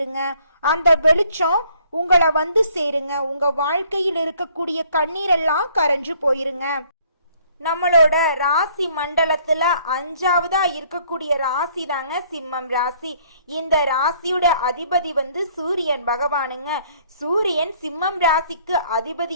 அந்த வெளிச்சம் உங்களை வந்து சேருங்க. உங்க வாழ்க்கையில் இருக்கக்கூடிய கண்ணீரெல்லாம் கரைஞ்சு போயிருங்க. நம்மளோட ராசி மண்டலத்துல 5வதா இருக்கக்கூடிய ராசி தாங்க சிம்மம் ராசி. இந்த ராசியோட அதிபதி வந்து சூரியன் பகவானுங்க. சூரியன் சிம்மம் ராசிக்கு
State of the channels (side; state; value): both; inverted; correlation -0.61